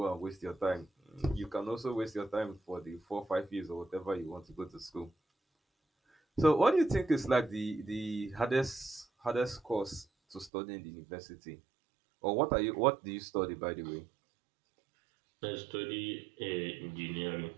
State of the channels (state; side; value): drops out; left; at 10.5 s